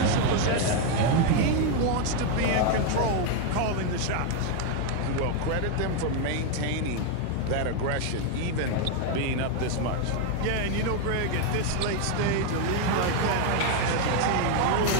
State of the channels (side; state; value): both; different; correlation 0.01